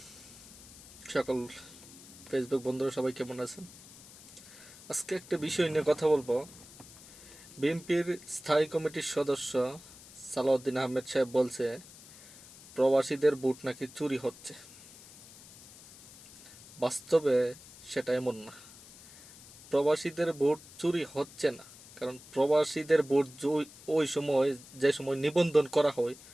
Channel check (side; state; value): left; noise; hiss, 19 dB below the sound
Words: সকল ফেসবুক বন্ধুরা সবাই কেমন আছেন? আজকে একটা বিষয় নিয়ে কথা বলবো। বিএনপির স্থায়ী কমিটির সদস্য সালাউদ্দিন আহমেদ সাহেব বলছে প্রবাসীদের ভোট নাকি চুরি হচ্ছে। বাস্তবে সেটা এমন না। প্রবাসীদের ভোট চুরি হচ্ছে না, কারণ প্রবাসীদের ভোট ওই সময়, যে সময় নিবন্ধন করা হয়,